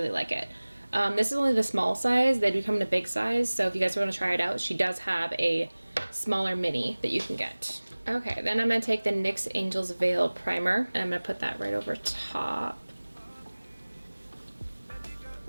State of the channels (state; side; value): inverted; both; correlation -1.00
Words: like it. This is only the small size. They do come in a big size, so if you guys want to try it out, she does have a smaller mini that you can get. Okay, then I'm gonna take the NYX Angel's Veil primer and I'm gonna put that right over top.